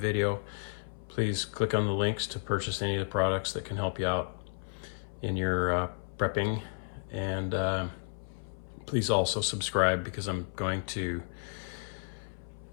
Please click on the links to purchase any of the products that can help you out in your prepping. And please also subscribe, because I'm going to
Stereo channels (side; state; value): right; silent; 56 dB below the other